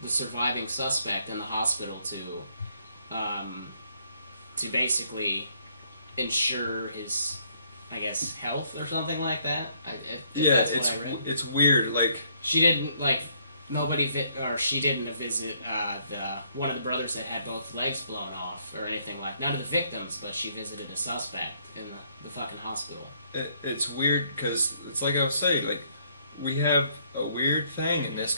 the surviving suspect in the hospital to basically ensure his, I guess, health or something like that. That's what I read. It's weird. Like, She didn't she didn't visit one of the brothers that had both legs blown off or anything like. None of the victims, but she visited a suspect in the fucking hospital. it's weird because it's like I was saying. Like, we have a weird thing in this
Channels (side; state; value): both; inverted; correlation -0.68